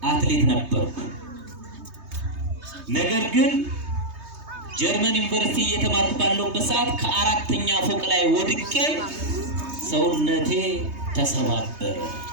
አትሌት ነበርኩ። ነገር ግን ጀርመን ዩኒቨርሲቲ እየተማርኩ ባለሁበት ሰዓት ከአራተኛ ፎቅ ላይ ወድቄ ሰውነቴ ተሰባበረ።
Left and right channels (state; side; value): late; left; 3.2 ms